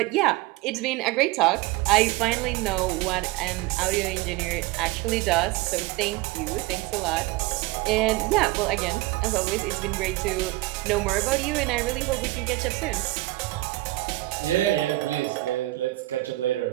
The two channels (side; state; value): left; quieter; 19.4 dB